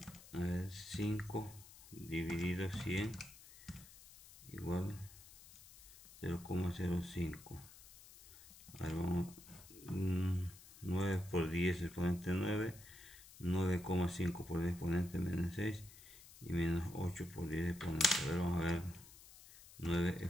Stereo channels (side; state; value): left; noise; hiss, 19 dB below the sound